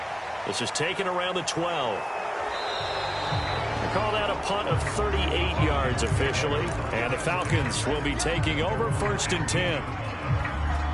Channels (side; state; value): both; identical; correlation 1.00